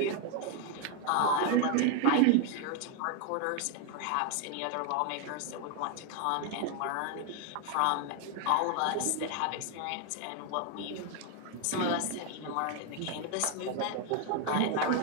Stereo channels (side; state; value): both; different; correlation 0.01